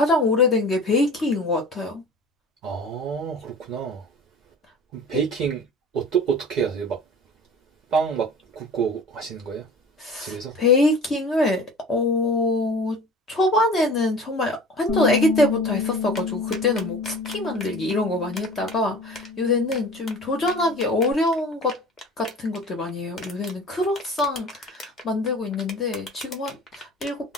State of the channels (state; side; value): normal; both; correlation 0.40